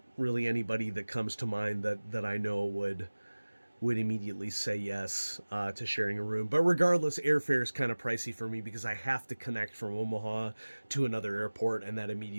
really anybody that comes to mind that I know would immediately say yes to sharing a room. But regardless, airfare is kind of pricey for me because I have to connect from Omaha to another airport, and that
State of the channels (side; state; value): both; inverted; correlation -1.00